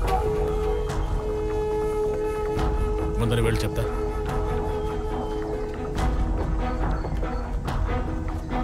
ముందని వెళ్ళి చెప్తా.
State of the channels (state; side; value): identical; both; correlation 1.00